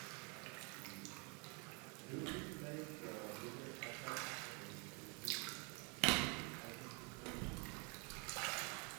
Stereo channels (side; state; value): left; quieter; 33.4 dB